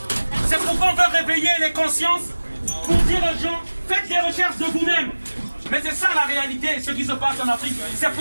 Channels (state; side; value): inverted; both; correlation -1.00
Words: C'est pourquoi on veut réveiller les consciences pour dire aux gens, faites des recherches de vous-même. Mais c'est ça la réalité, ce qui se passe en Afrique. C'est